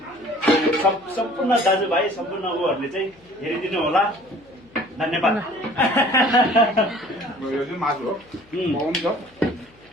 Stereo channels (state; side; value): noise; left; hum, 29 dB below the sound